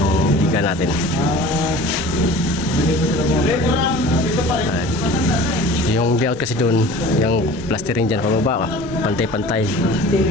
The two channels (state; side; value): normal; both; correlation 0.42